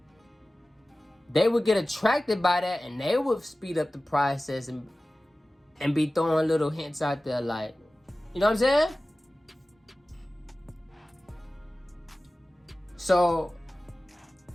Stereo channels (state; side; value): normal; both; correlation 0.97